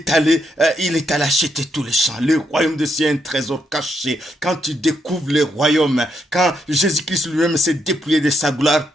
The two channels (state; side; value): normal; both; correlation 0.79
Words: allé acheter tout le champ. Le royaume de Dieu est un trésor caché. Quand tu découvres le royaume, quand Jésus-Christ lui-même s'est dépouillé de sa gloire